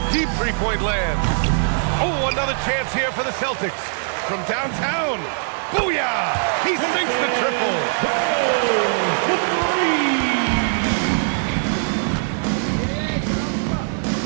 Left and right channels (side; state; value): left; silent; digital silence